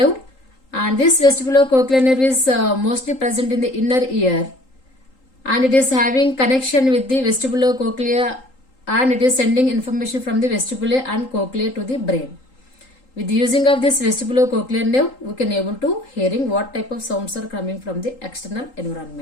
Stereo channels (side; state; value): right; late; 3.8 ms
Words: and this vestibular cochlear nerve is mostly present in the inner ear, and it is having connection with the vestibular cochlea, and it is sending information from the vestibule and cochlea to the brain. With the using of this vestibular cochlear nerve, we can able to hearing what type of sounds are coming from the external